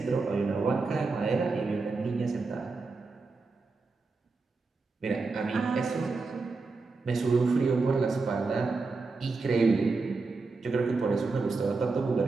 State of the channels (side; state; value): left; quieter; 4.0 dB